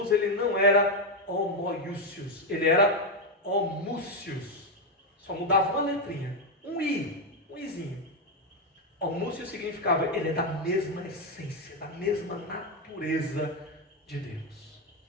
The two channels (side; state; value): both; normal; correlation 0.06